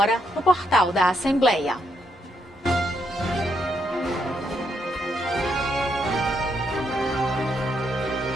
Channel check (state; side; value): normal; both; correlation 0.78